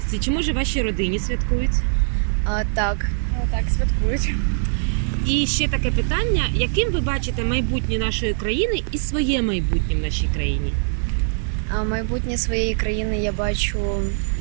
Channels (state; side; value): silent; left; 64 dB below the other